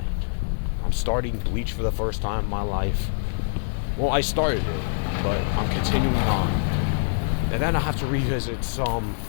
I'm starting Bleach for the first time in my life. Well, I started it, but I'm continuing on. And then I have to revisit some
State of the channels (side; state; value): right; silent; 58 dB below the other